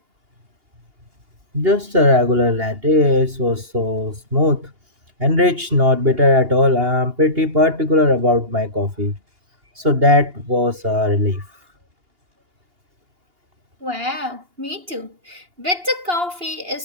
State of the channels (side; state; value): left; late; 2.8 ms